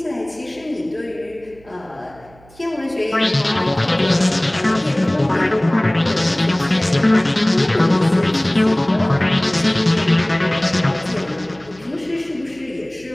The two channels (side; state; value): right; noise; hum, 26 dB below the sound